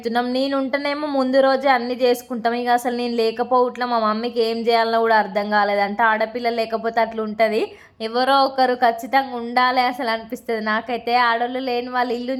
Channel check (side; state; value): both; identical; correlation 1.00